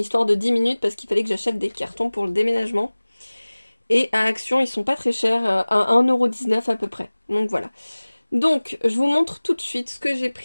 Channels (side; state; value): both; inverted; correlation -1.00